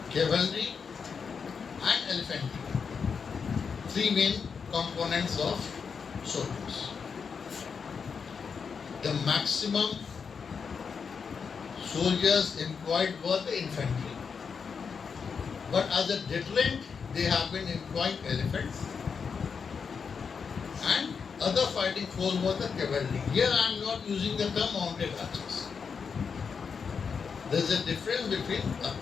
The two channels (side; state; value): right; quieter; 5.9 dB